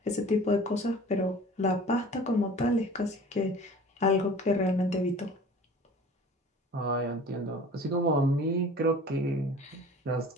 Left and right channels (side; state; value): both; normal; correlation 0.44